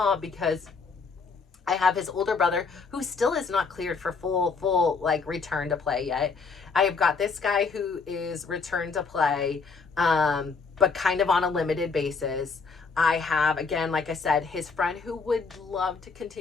because I have his older brother who still is not cleared for full like return to play yet. I have got this guy who is returned to play, but kind of on a limited basis. I have, again, like I said, his friend who would love to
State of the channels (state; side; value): quieter; right; 4.8 dB